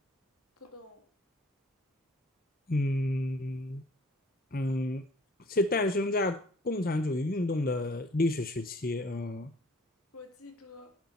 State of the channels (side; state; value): both; normal; correlation 0.55